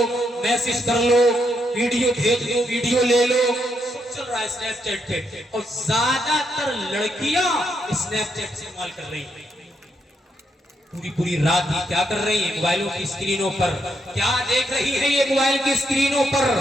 میسج کر لو، ویڈیو بھیج دو، ویڈیو لے لو، سب چل رہا ہے اسنیپ چیٹ پہ۔ اور زیادہ تر لڑکیاں اسنیپ چیٹ استعمال کر رہی ہیں، پوری رات ہی کیا کر رہی ہیں؟ موبائلوں کی اسکرینوں پر کیا دیکھ رہی ہیں؟ یہ موبائل کی اسکرینوں پر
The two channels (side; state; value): both; normal; correlation 0.78